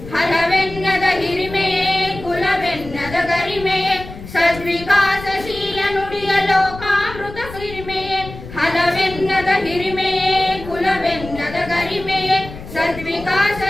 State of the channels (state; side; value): noise; left; rumble, 13 dB below the sound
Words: ಹಲವೆನ್ನದ ಹಿರಿಮೆಯೇ ಕುಲವೆನ್ನದ ಗರಿಮೆಯೇ ಸದ್ವಿಕಾಸಶೀಲ ನುಡಿಯ ಲೋಕಾಮೃತ ಸಿರಿಮೆಯೇ ಹಲವೆನ್ನದ ಹಿರಿಮೆಯೇ ಕುಲವೆನ್ನದ ಗರಿಮೆಯೇ